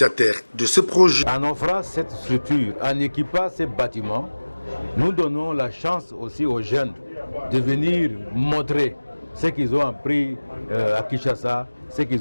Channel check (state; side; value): inverted; both; correlation -1.00